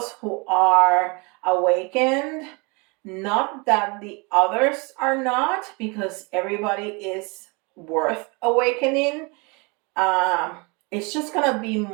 who are awakened. Not that the others are not, because everybody is worth awakening. um, it's just gonna be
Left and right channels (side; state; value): left; quieter; 29.6 dB